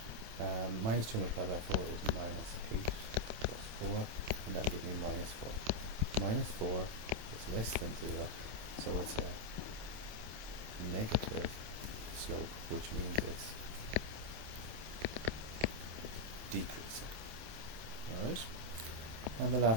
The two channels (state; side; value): late; left; 27 ms